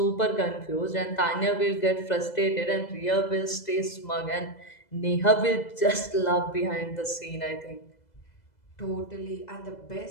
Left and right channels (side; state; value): right; late; 2.0 ms